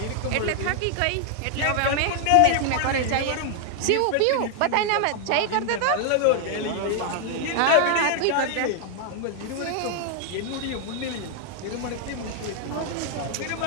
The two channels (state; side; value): different; both; correlation 0.00